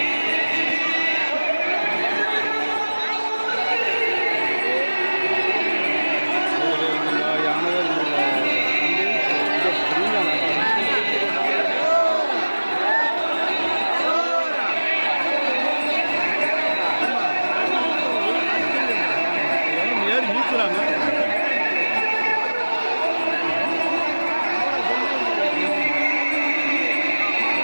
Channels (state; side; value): inverted; both; correlation -1.00